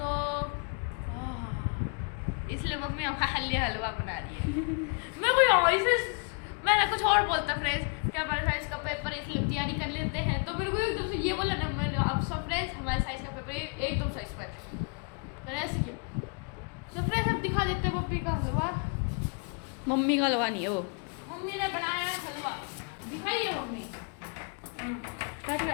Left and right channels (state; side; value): quieter; right; 36.7 dB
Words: इसलिए मम्मी हमारे हलवा बना रही है। मैं कोई ऐसे मैं कुछ और बोलता फ्रेंड्स कि हमारे साइंस का पेपर है इसलिए तैयारी कर लेते हैं, तो मेरे को एकदम से ये बोला ना, मैंने अब सब फ्रेंड्स हमारे साइंस का पेपर एकदम साइंस पर मैंने ऐसे किया। सो फ्रेंड्स अब दिखा देते हैं मम्मी का हलवा। मम्मी का हलवा नहीं है वो। मम्मी ने बनाया हलवा, दिखाइए मम्मी।